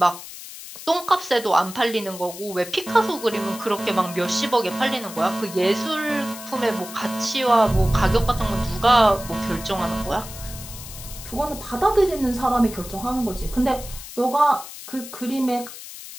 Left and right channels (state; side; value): noise; left; hiss, 13 dB below the sound